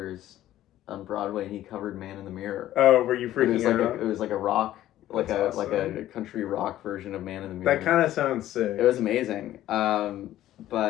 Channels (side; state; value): right; quieter; 13.5 dB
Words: on Broadway, and he covered Man in the Mirror. Oh, were you freaking out? It was like a rock, like awesome. a country rock version of Man in the Mirror. That kind of sounds sick. It was amazing.